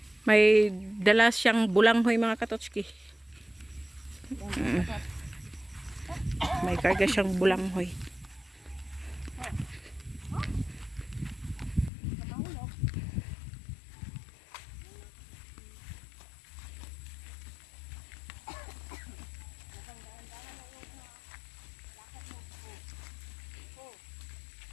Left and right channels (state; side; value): drops out; right; at 11.9 s